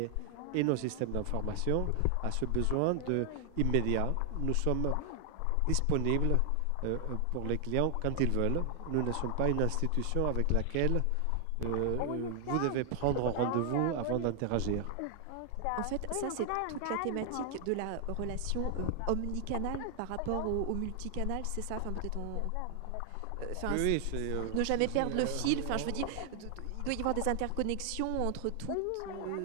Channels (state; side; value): different; both; correlation 0.00